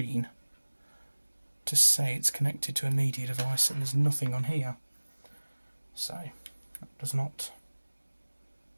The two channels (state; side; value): inverted; both; correlation -1.00